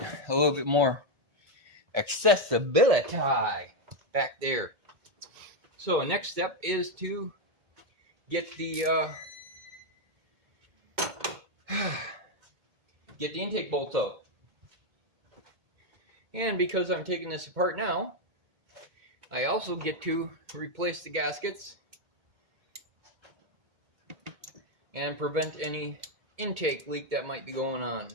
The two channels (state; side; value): late; left; 2.1 ms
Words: little bit more accessibility back there. So next step is to get the intake bolts out. And because I'm taking this apart now, I also get to replace the gaskets and prevent any intake leak that might be going on.